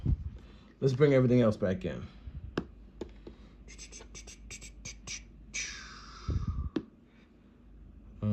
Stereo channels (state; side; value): identical; both; correlation 1.00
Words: Let's bring everything else back in.